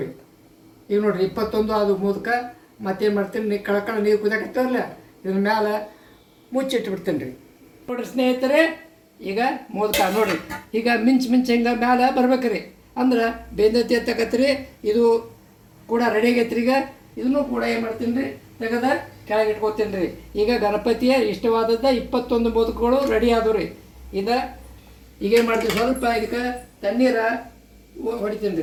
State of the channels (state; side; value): identical; both; correlation 1.00